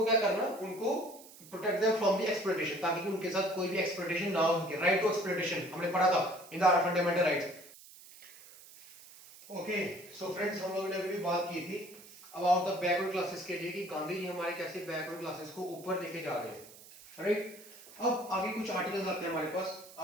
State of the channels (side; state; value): right; noise; hiss, 20 dB below the sound